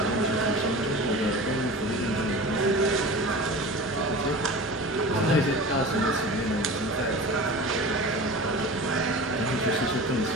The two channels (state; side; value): normal; both; correlation 0.35